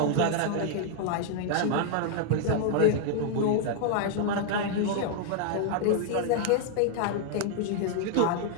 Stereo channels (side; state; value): both; different; correlation 0.00